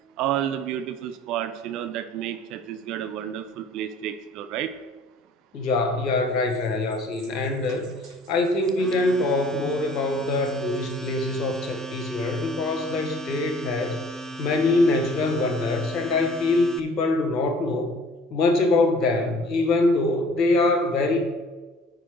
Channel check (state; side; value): normal; both; correlation 0.52